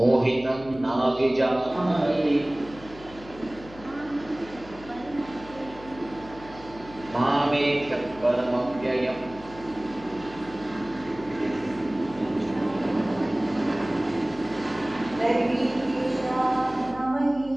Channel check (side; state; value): left; noise; hum, 19 dB below the sound